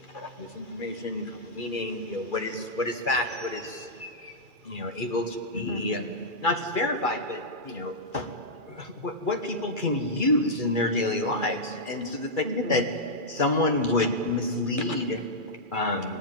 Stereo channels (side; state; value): left; late; 2.4 ms